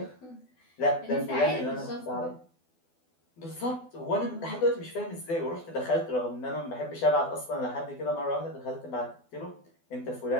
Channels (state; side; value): late; right; 12 ms